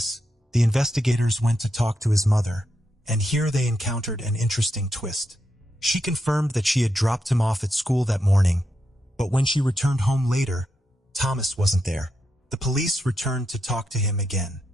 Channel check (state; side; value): normal; both; correlation 0.84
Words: the investigators went to talk to his mother, and here they encountered an interesting twist. She confirmed that she had dropped him off at school that morning, but when she returned home later, Thomas wasn't there. The police returned to talk to him again.